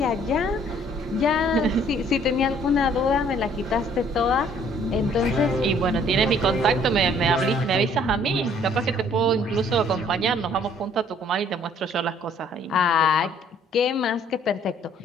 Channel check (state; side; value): normal; both; correlation 0.60